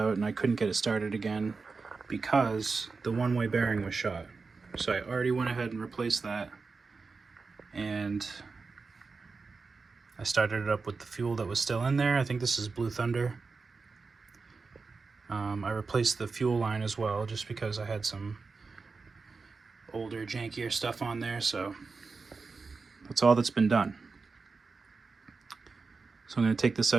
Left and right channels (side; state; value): left; quieter; 4.4 dB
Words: and I couldn't get it started again because the one-way bearing was shot. So I already went ahead and replaced that, and I started it up with the fuel that was still in there. I think this is Blue Thunder. I replaced the fuel line as well, just because I had some older, jankier stuff on there, so that's all that's been done. So I'm going to take this